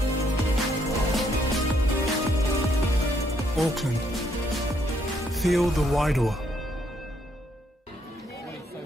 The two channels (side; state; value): both; normal; correlation 0.72